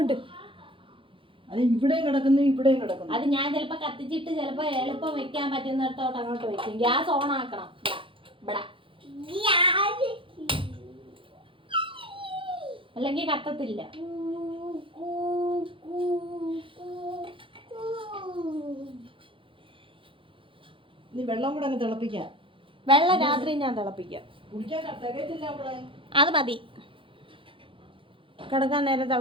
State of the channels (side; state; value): left; late; 0.25 ms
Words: അത് ഇവിടെയും കിടക്കുന്നു, ഇവിടെയും കിടക്കുന്നു. അത് ഞാൻ ചിലപ്പോ കത്തിച്ചിട്ട് ചിലപ്പോ എളുപ്പം വെക്കാൻ പറ്റുന്നിടത്തോട്ട് അങ്ങോട്ട് വെക്കും. ഗ്യാസ് ഓൺ ആക്കണം. ഇവിടെ അല്ലെങ്കിൽ കത്തത്തില്ല. നീ വെള്ളം കൂടെ അങ്ങ് തിളപ്പിക്കാം. വെള്ളം രാത്രി ഞാൻ തിളപ്പിക്കാം. കുടിക്കാൻ തികയത്തില്ല അവിടെ. അത് മതി, കിടക്കാൻ നേരം